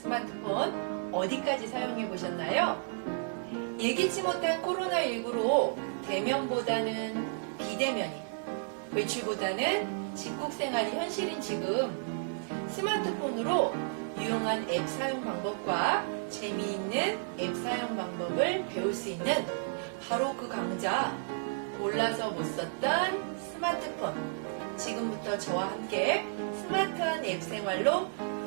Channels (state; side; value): silent; left; 56 dB below the other